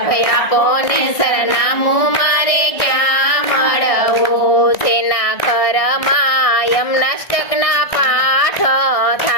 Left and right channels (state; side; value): late; right; 1.6 ms